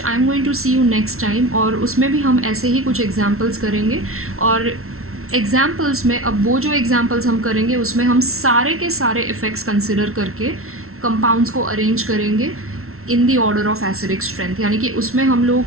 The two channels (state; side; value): late; left; 0.62 ms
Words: I am going to see you next time, और उसमें भी हम ऐसे ही कुछ एग्जांपल्स करेंगे. और एग्जांपल्स में अब वो जो एग्जांपल्स हम करेंगे उसमें हम सारे के सारे इफ़ेक्ट्स कंसिडर करके कंपाउंड्स को अरेंज करेंगे in the order of acidic strength, यानी कि उसमें हम